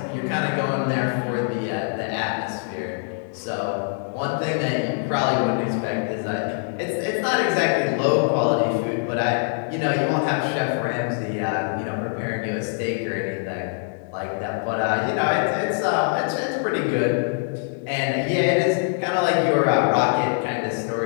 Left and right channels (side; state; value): right; silent; 63 dB below the other